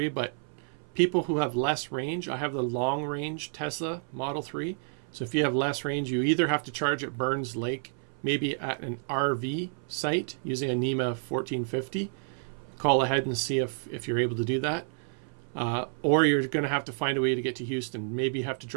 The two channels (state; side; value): silent; left; 58 dB below the other